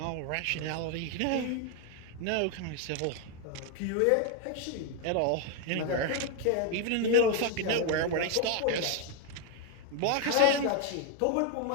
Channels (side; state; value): both; different; correlation 0.01